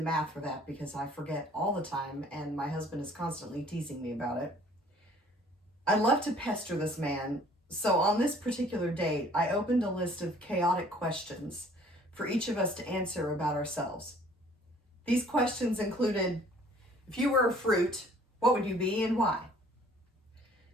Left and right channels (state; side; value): normal; both; correlation 0.55